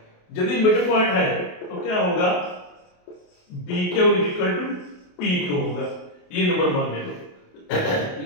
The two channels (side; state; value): right; late; 28 ms